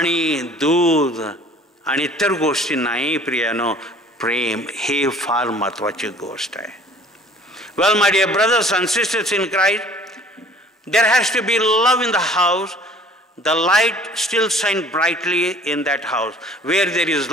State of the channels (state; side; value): normal; both; correlation 0.51